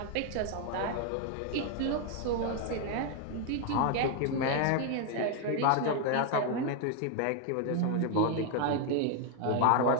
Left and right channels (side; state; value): both; different; correlation 0.00